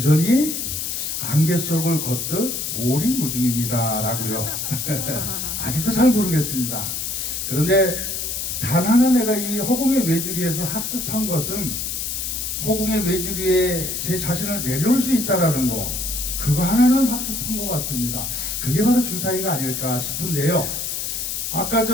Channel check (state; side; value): noise; left; hiss, 3 dB below the sound